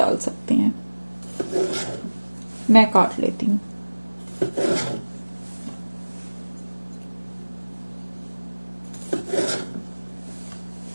सकते हैं। मैं काट लेती हूँ।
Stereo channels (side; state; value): both; inverted; correlation -1.00